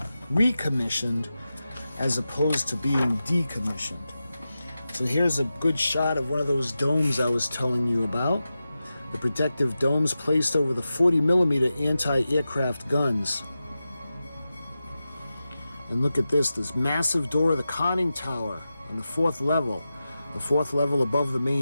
recommissioned as opposed to being decommissioned. So here's a good shot of one of those domes I was telling you about. The protective domes placed over the 40mm anti-aircraft guns. And look at this massive door of the conning tower on the 4th level. The 4th level above the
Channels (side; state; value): both; inverted; correlation -0.92